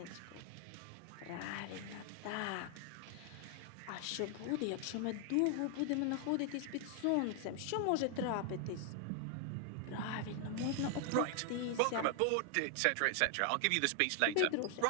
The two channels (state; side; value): different; both; correlation 0.00